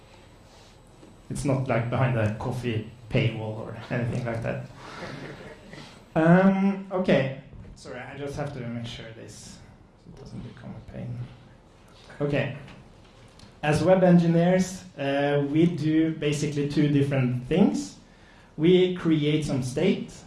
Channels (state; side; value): identical; both; correlation 1.00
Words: It's not behind a coffee paywall or anything like that. Okay, sorry, I just have to make sure this doesn't become a pain. Okay, as web engineers, we do basically two different things. We create some state,